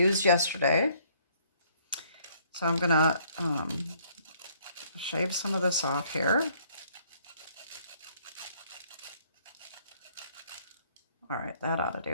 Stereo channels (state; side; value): inverted; both; correlation -0.63